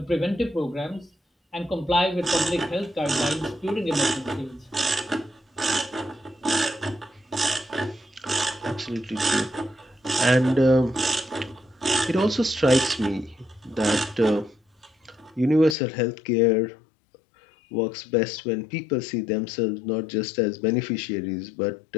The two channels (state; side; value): drops out; right; at 15.8 s